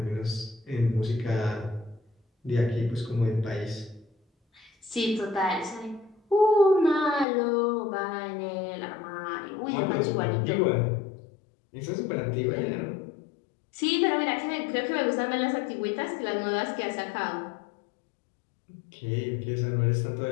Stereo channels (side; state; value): right; drops out; at 7.2 s